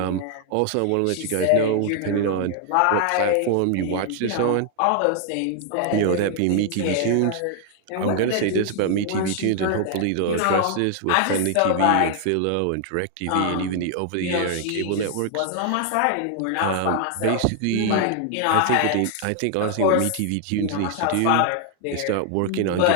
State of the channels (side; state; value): both; different; correlation 0.00